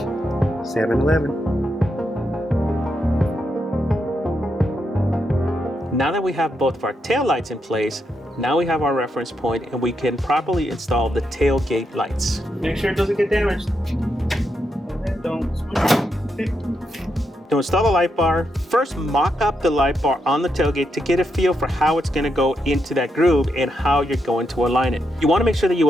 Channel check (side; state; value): both; normal; correlation 0.82